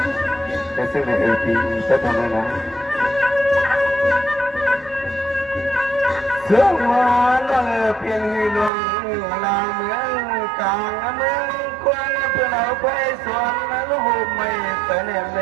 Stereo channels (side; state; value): left; drops out; at 8.7 s